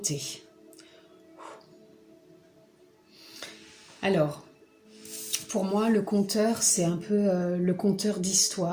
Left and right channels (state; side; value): identical; both; correlation 1.00